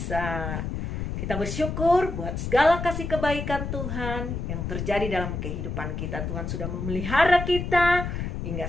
Kita bersyukur buat segala kasih kebaikan Tuhan yang terjadi dalam kehidupan kita. Tuhan sudah memelihara kita hingga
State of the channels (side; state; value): left; noise; rumble, 4 dB below the sound